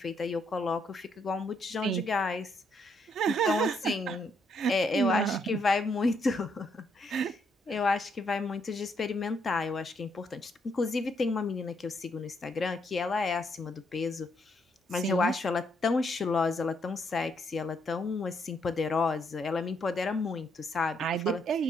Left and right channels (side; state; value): both; normal; correlation 0.74